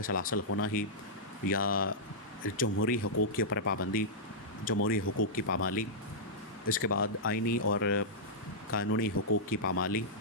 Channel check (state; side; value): normal; both; correlation -0.11